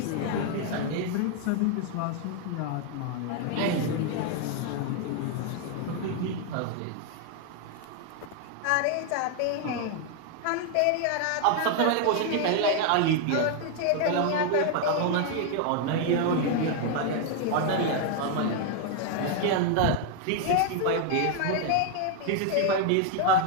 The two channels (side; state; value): both; different; correlation 0.00